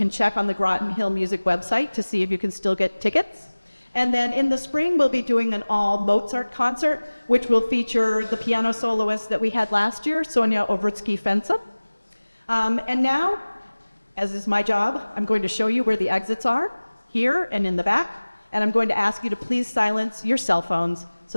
check on the Groton Hill Music website to see if you can still get tickets. And then in the spring, we'll be doing an all Mozart concert, which will feature the piano soloist that we had last year, Sonia Ovritsky-Fensa. And now, as is my job, I'm going to show you where the exits are, here and in the back, and I'm going to ask you to please silence your cell phones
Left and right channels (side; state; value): both; inverted; correlation -1.00